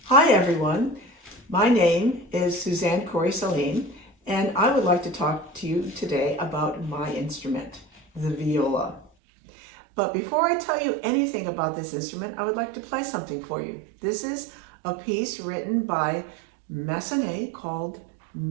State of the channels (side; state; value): left; drops out; at 9.1 s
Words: Hi everyone, my name is Suzanne Corey-Sahlin and I would like to talk to you today about my instrument, the viola. But before I tell you anything about this instrument, I would like to play something for you. This is a piece written by Massenet called